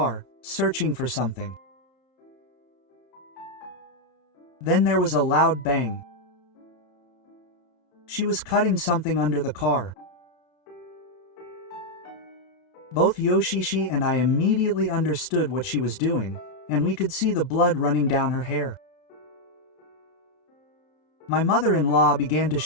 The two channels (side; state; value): right; late; 31 ms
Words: searching for something. Then there was a loud bang. She was cutting something under the car. Both Yoshishi and I immediately understood what she was doing, and we could see the blood running down her hair. My mother-in-law began to